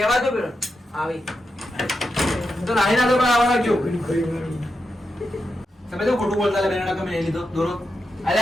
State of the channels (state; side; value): normal; both; correlation 0.87